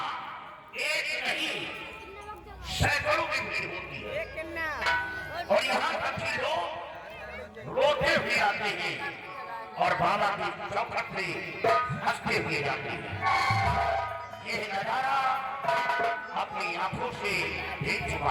एक नहीं सैकड़ों की भीड़ होती है और यहाँ तक कि लोग रोते हुए आते हैं और बाबा की चौखट पे हंसते हुए जाते हैं। यह नजारा अपनी आंखों से देख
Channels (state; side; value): identical; both; correlation 1.00